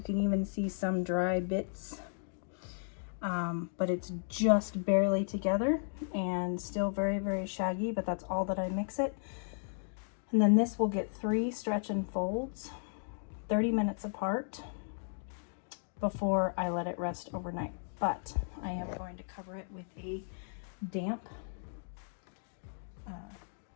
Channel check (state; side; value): silent; right; digital silence